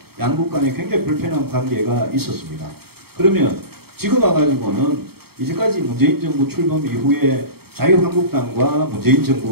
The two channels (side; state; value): left; late; 0.96 ms